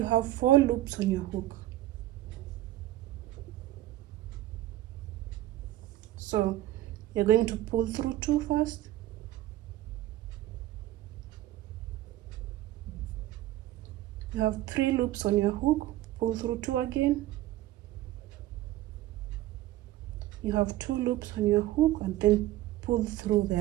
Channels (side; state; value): left; quieter; 15.2 dB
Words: have 4 loops on your hook. So you're going to pull through 2 first, you have 3 loops on your hook, pull through 2 again, you have 2 loops on your hook, and then pull through